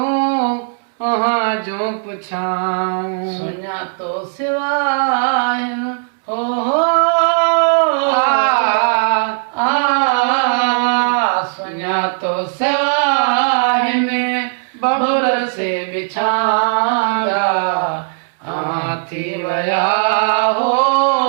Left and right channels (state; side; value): silent; left; digital silence